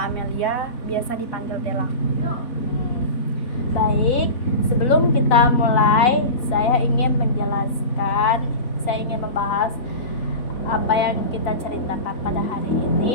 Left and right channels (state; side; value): late; right; 3.8 ms